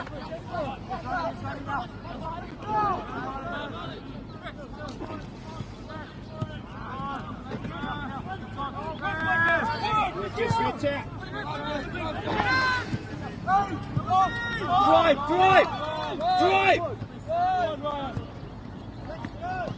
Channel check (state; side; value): identical; both; correlation 1.00